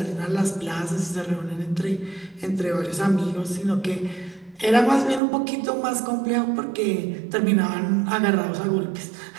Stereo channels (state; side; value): drops out; left; at 5.2 s